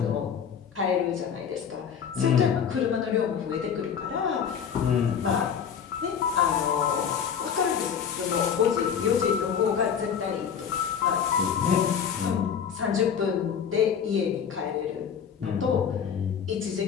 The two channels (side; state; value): right; quieter; 7.5 dB